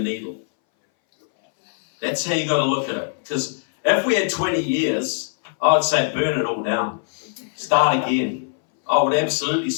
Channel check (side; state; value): right; silent; 62 dB below the other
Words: That's how you got to look at it. Because if we had 20 years, I would say burn it all down. Start again. I would absolutely